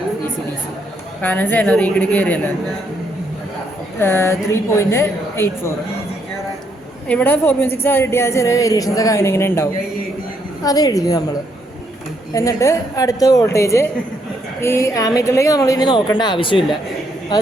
DC കാരണം സെനറി കൂടി കയറിയല്ലോ. 3.84. ഇവിടെ 4.6 കിട്ടിയാൽ ചെറിയ വേരിയേഷൻസ് ഒക്കെ അങ്ങനെ ഇങ്ങനെ ഉണ്ടാവും. അത് എഴുതി നമ്മൾ. എന്നിട്ട് അടുത്ത വോൾട്ടേജ് ഈ ആമീറ്ററിലേക്ക് നമ്മൾ ഇനി നോക്കേണ്ട ആവശ്യമില്ല. അത്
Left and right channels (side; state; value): both; normal; correlation 0.74